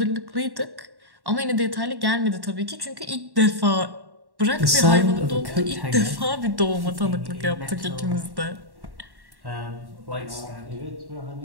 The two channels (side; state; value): left; late; 1.1 ms